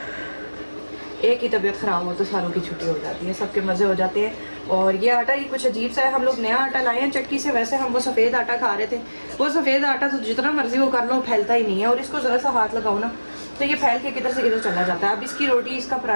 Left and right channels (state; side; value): inverted; both; correlation -1.00